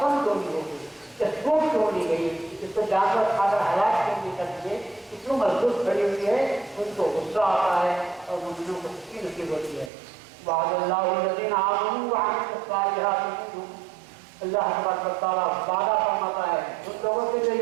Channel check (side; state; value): left; drops out; at 9.9 s